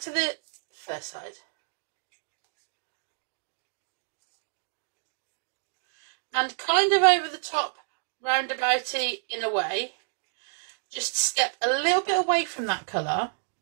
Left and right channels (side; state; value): left; silent; digital silence